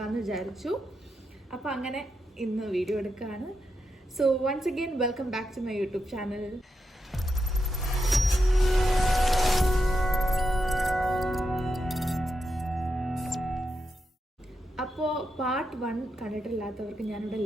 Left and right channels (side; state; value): both; normal; correlation 0.85